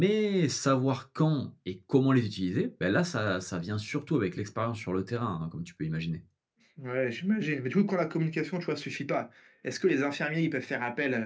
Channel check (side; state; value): both; identical; correlation 1.00